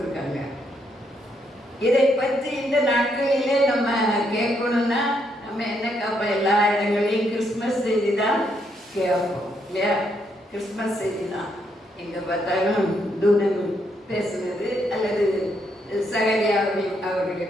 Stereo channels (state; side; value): normal; both; correlation 0.76